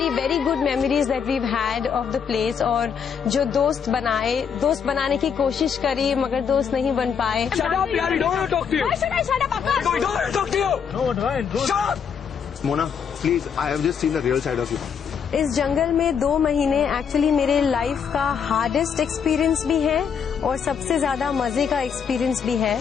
very good memories that weave had of the place. और जो दोस्त बनाए, दोस्त बनाने की कोशिश करी मगर दोस्त नहीं बन पाए। Mona please, I have just seen the real side of you. इस जंगल में 2 महीने एक्चुअली मेरे लाइफ का हार्डेस्ट एक्सपीरियंस भी है और सबसे ज्यादा मजे का एक्सपीरियंस भी है।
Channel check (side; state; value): right; quieter; 7.1 dB